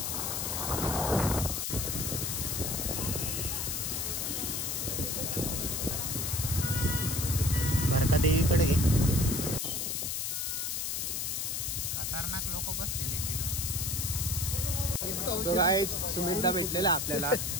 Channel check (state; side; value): noise; left; hiss, 1 dB below the sound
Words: भरका देवीकडे घे. खतरनाक लोक बसलेले तो गाईज सुमितदा भेटलेला आपल्याला.